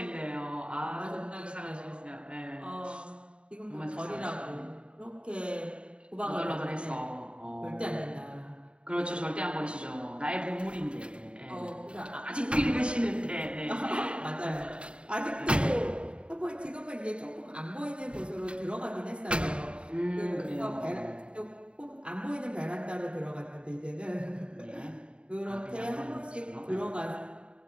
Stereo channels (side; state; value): left; late; 0.055 ms